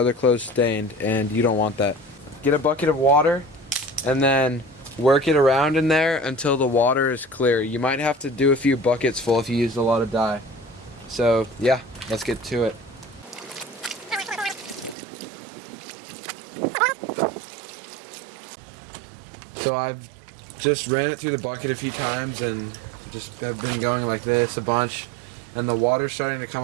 clothes stained, and you don't want that. Get a bucket of water and then work it around in there until the water is clear. You might have to do a few buckets full if you used a lot of dye. So yeah, let's get to it. So I've just ran it through the bucket a few times and just have been going like this a bunch, and the water's starting to come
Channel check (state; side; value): drops out; left; at 15.0 s